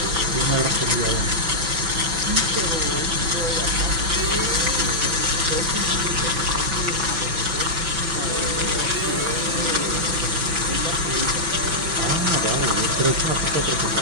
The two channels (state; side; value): late; left; 5.9 ms